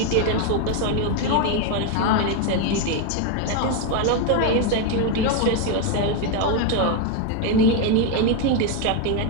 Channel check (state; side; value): different; both; correlation 0.02